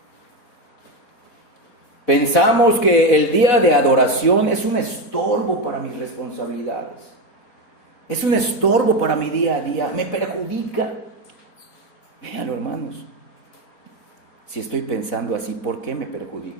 Pensamos que el día de adoración es un estorbo para mis responsabilidades. Es un estorbo para mi día a día. Me perjudica. Véanlo, hermanos. Si estoy pensando así, ¿por qué me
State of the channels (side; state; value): right; late; 4.1 ms